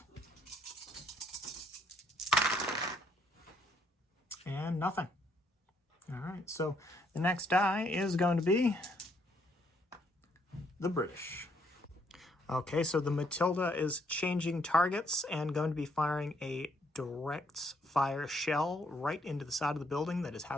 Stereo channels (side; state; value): both; normal; correlation 0.70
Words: And nothing. All right, so the next die is going to be the British. Okay, so the Matilda is changing targets and going to be firing a direct fire shell right into the side of the building that is